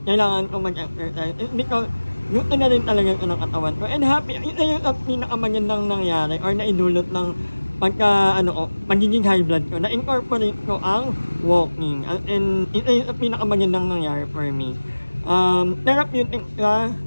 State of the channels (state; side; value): inverted; both; correlation -1.00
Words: kailangan ko mag-exercise. Because gusto na rin talaga ito ng katawan ko. And happy, ito yung pinakamagandang nangyari or naidulot ng magiging high blood ko. Na-incorporate ko ang walking. And ito yung pinakamagandang nangyari for me. Therapeutic ka,